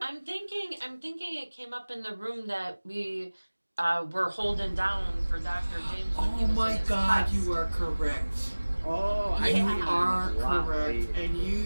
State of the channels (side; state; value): both; inverted; correlation -1.00